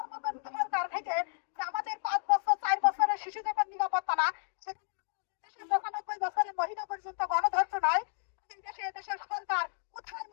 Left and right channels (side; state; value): right; silent; digital silence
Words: মতন সরকার থেকে যে আমাদের 5 বছর 4 বছরের শিশু যখন নিরাপত্তা না, দেশের 95 বছরের মহিলা পর্যন্ত গণধর্ষণ হয়, দেশে দেশের সরকার কোথায়